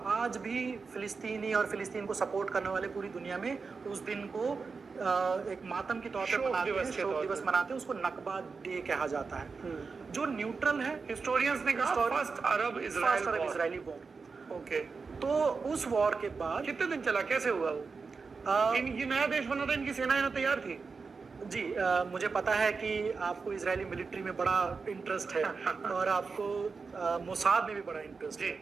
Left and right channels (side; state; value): left; quieter; 4.7 dB